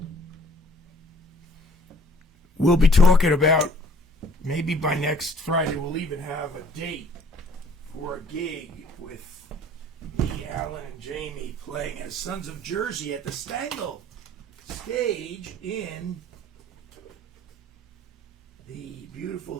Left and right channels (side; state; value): both; normal; correlation 0.56